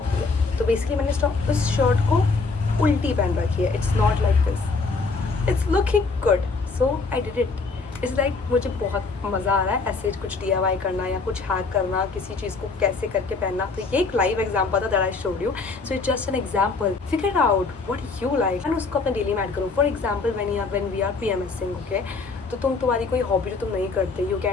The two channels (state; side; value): quieter; right; 4.2 dB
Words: है, तो बेसिकली मैंने इस शर्ट को उल्टी पहन रखी है, it's not like this, it's looking good, so I did it. It's like मुझे बहुत मज़ा आ रहा है ऐसे कुछ DIY करना या कुछ हैक करना, किसी चीज़ को कैसे करके पहनना। तो ये एक लाइव एग्जाम्पल था that I showed you, so it's just an example, figure out what you like and उसको अपने डेली में ऐड करो। For example when we are PMSing, okay, तो तुम्हारी कोई हॉबी जो तुम नहीं करते, यू